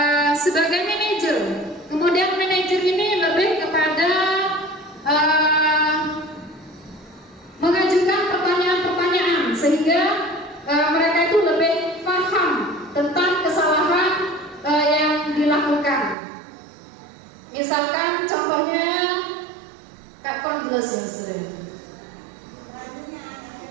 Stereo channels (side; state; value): left; drops out; at 16.2 s